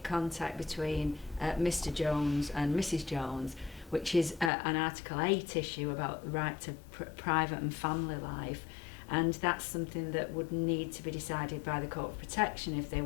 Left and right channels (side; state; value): right; drops out; at 4.5 s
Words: contact between Mr. Jones and Mrs. Jones, which is an Article 8 issue about the right to private and family life. And that's something that would need to be decided by the Court of Protection if they